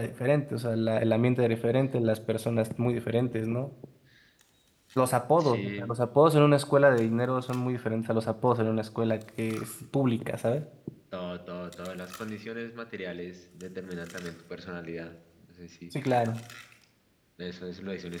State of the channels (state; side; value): identical; both; correlation 1.00